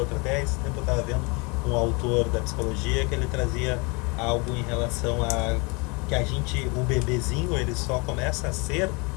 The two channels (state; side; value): quieter; right; 29.4 dB